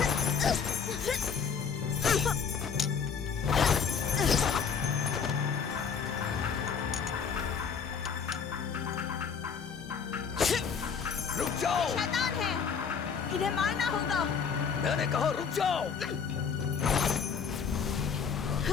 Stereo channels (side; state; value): right; quieter; 6.3 dB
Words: रुक जाओ, शैतान है, इन्हें मारना होगा। मैंने कहा रुक जाओ।